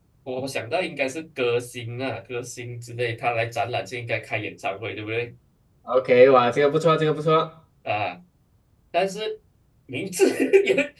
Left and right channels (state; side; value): identical; both; correlation 1.00